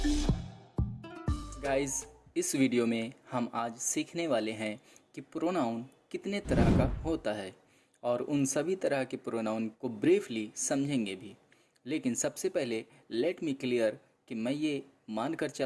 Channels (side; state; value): both; identical; correlation 1.00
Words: गाइस, इस वीडियो में हम आज सीखने वाले हैं कि प्रोनाउन कितने तरह का होता है और उन सभी तरह के प्रोनाउन को ब्रीफली समझेंगे भी। लेकिन सबसे पहले लेट मी क्लियर कि मैं ये मानकर